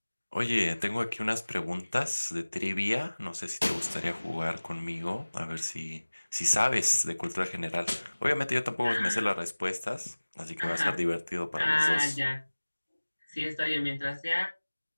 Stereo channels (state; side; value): inverted; both; correlation -1.00